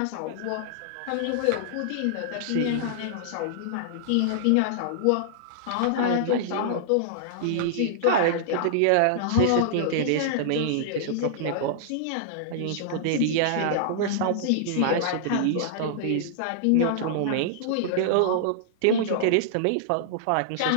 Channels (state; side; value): different; both; correlation -0.01